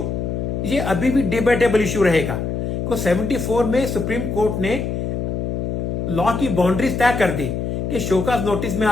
ये अभी भी डिबेटेबल इशू रहेगा, क्योंकि 74 में सुप्रीम कोर्ट ने लॉ की बाउंड्रीज तय कर दी कि शोकाज नोटिस में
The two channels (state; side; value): noise; left; hum, 2 dB below the sound